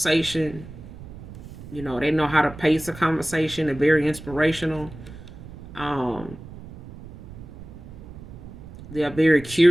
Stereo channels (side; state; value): right; noise; rumble, 15 dB below the sound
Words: You know, they know how to pace a conversation. They're very inspirational. Um, they're very